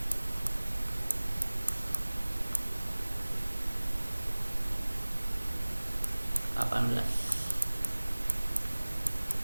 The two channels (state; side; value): inverted; both; correlation -1.00